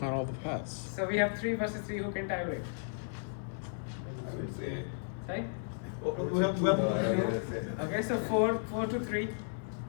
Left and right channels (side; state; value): right; silent; 55 dB below the other